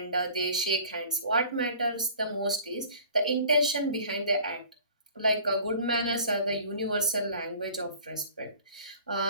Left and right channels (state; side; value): inverted; both; correlation -0.48